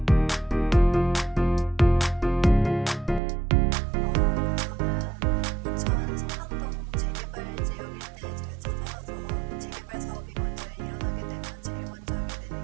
저는 인천 성남동 재개발 지역 일대에 제가 찾아가서 재개발 사업이 먼저 일어나게 되면 제일 먼저 하게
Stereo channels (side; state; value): left; drops out; at 3.2 s